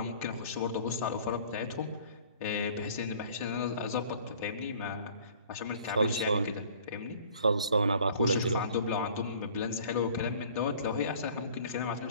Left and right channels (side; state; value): both; inverted; correlation -0.51